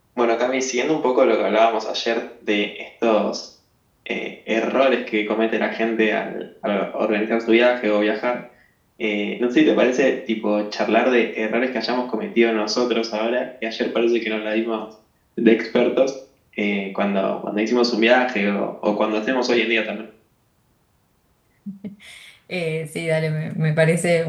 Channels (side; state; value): both; identical; correlation 1.00